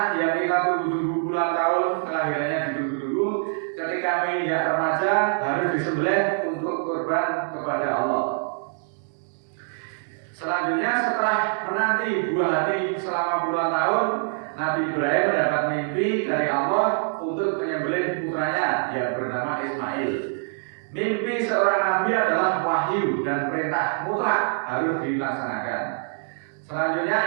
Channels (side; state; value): left; silent; digital silence